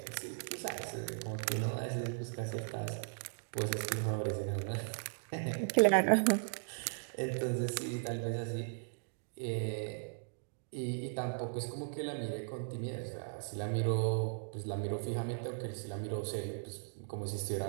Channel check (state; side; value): silent; left; digital silence